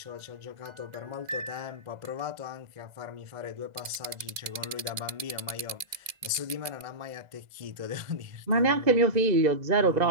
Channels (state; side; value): late; left; 2.0 ms